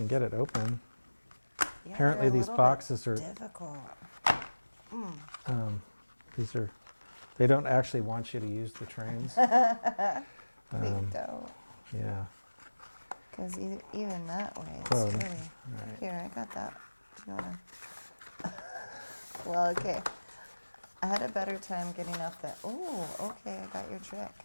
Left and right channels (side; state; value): both; inverted; correlation -1.00